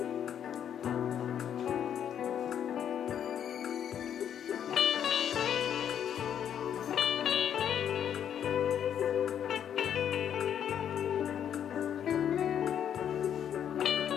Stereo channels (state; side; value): quieter; right; 9.2 dB